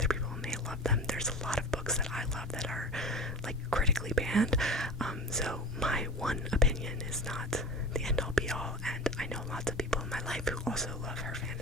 people may love them. There's a lot of books that I love that are critically banned. So my one opinion is not the end all be all, and I know lots of people in my life who also love her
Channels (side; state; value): both; normal; correlation 0.32